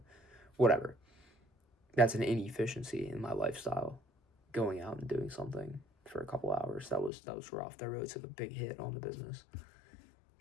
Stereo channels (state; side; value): drops out; right; at 7.1 s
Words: whatever. That's an inefficiency in my lifestyle. Going out and doing something for a couple hours. That was rough. That really took a big hit on the business.